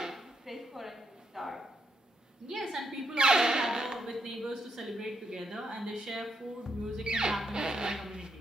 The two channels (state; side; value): normal; both; correlation 0.78